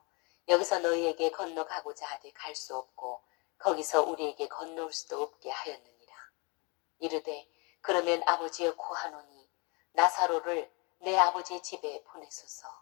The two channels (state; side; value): quieter; right; 30.6 dB